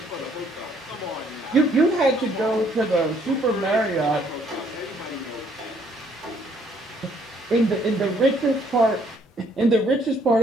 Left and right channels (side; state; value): both; normal; correlation 0.65